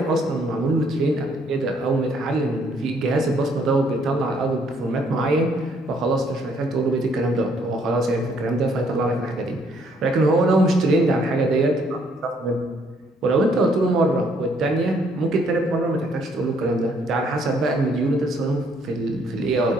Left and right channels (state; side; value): normal; both; correlation 0.67